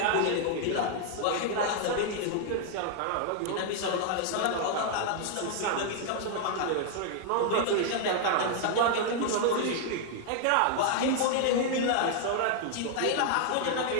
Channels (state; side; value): different; both; correlation 0.00